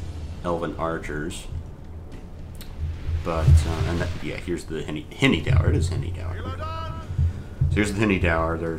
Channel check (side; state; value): both; identical; correlation 1.00